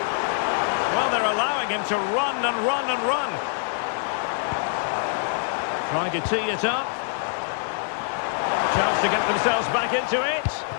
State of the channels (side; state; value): right; silent; 62 dB below the other